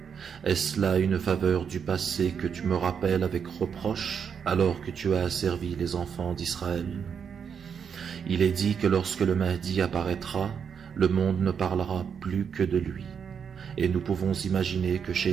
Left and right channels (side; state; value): left; quieter; 7.0 dB